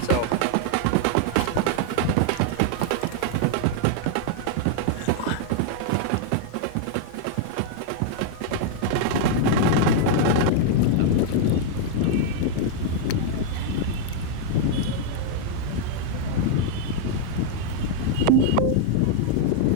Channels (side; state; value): both; different; correlation 0.00